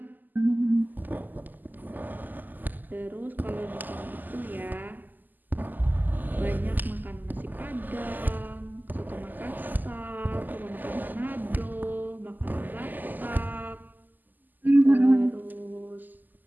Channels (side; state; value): left; late; 0.086 ms